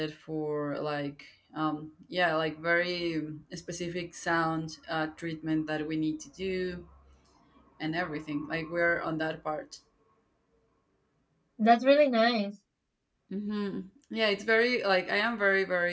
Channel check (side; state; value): both; identical; correlation 1.00